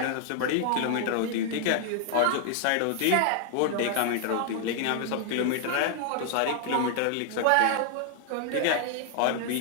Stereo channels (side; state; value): both; different; correlation 0.00